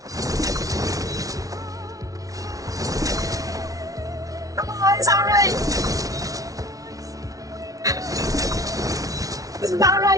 Come on, it's alright! This is not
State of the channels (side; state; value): left; late; 0.17 ms